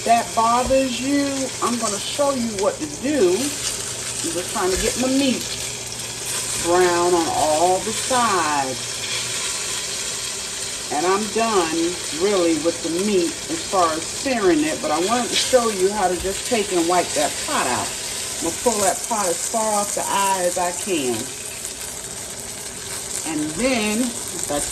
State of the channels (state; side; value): identical; both; correlation 1.00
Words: that bothers you, I'm going to show you what to do. I'm just trying to get my meat brown on all the sides. And I'm done, really, with the meat as far as searing it. But I wanted to show you how to just take and wipe that pot out. I'm going to pull that pot as far off the eye as I can. And then, if I